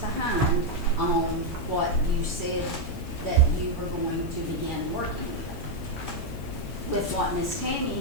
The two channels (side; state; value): left; noise; hiss, 23 dB below the sound